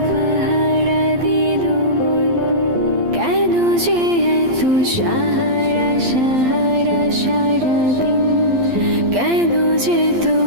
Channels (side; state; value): left; late; 12 ms